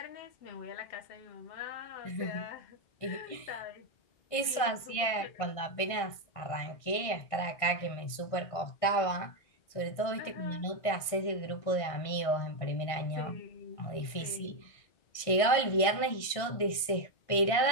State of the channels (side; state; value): right; late; 1.6 ms